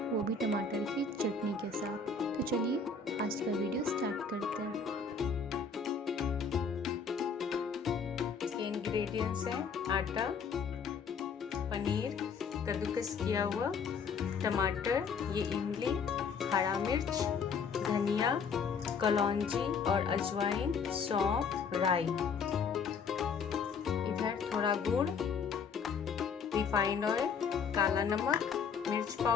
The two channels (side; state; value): right; quieter; 5.5 dB